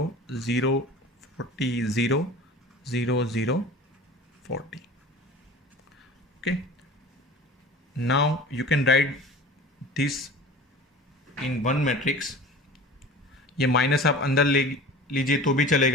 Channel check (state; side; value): normal; both; correlation 0.39